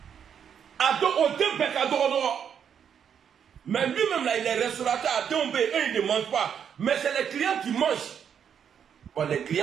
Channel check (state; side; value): quieter; left; 8.0 dB